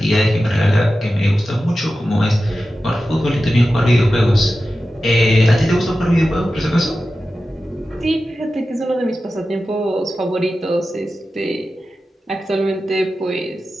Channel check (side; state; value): both; normal; correlation 0.93